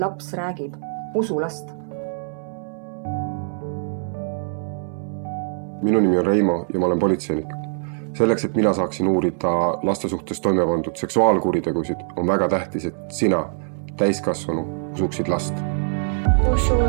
räägib, usu last. Minu nimi on Reimo ja ma olen politseinik. Selleks, et mina saaksin uurida laste suhtes toime pandud seksuaalkuritegusid, on väga tähtis, et sina, täiskasvanu, usuksid last. Usu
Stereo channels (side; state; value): left; silent; 63 dB below the other